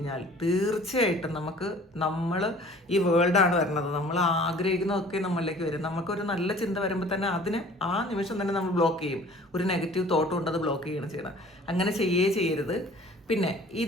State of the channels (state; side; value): normal; both; correlation 0.49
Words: തീർച്ചയായിട്ടും നമ്മൾ ഈ വേൾഡാണ് വരുന്നത്. നമ്മൾ ആഗ്രഹിക്കുന്നതൊക്കെ നമ്മളിലേക്ക് വരും. നമുക്കൊരു നല്ല ചിന്ത വരുമ്പോൾ തന്നെ അതിനെ ആ നിമിഷം തന്നെ നമ്മൾ ബ്ലോക്ക് ചെയ്യും. ഒരു നെഗറ്റീവ് തോട്ട് കൊണ്ട് അത് ബ്ലോക്ക് ചെയ്യണം ചെയ്യണം. അങ്ങനെ ചെയ്യരുത്. പിന്നെ